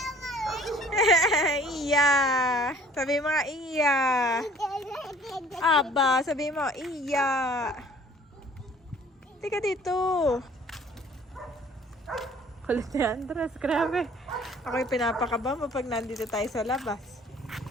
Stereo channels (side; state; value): both; normal; correlation 0.54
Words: Iya! Sabi mo nga, iya! Aba, sabi mo, iya! Tika dito! Kulit ni Andres, grabe. Ako yung pinapakaba mo pag nandito tayo sa labas.